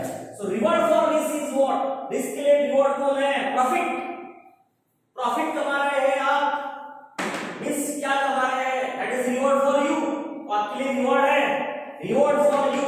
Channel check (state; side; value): identical; both; correlation 1.00